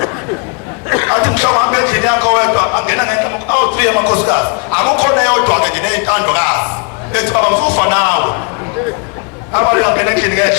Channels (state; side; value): quieter; right; 34.3 dB